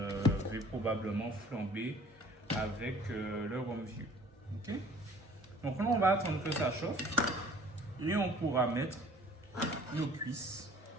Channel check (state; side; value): normal; both; correlation 0.52